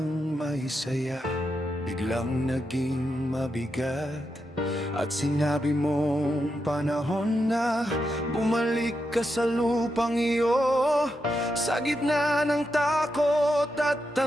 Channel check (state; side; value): normal; both; correlation 0.85